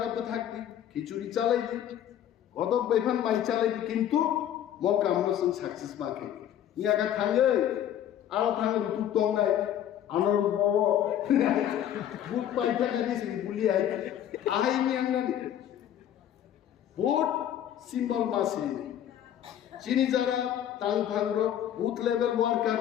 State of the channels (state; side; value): quieter; right; 10.6 dB